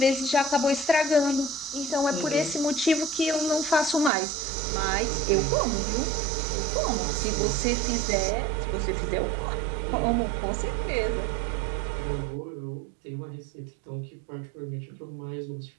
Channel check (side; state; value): left; drops out; at 4.1 s